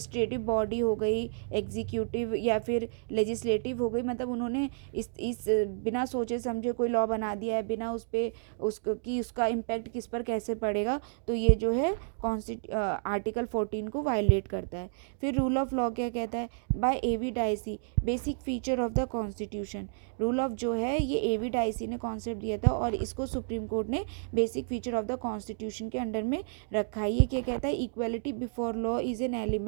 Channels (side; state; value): left; silent; digital silence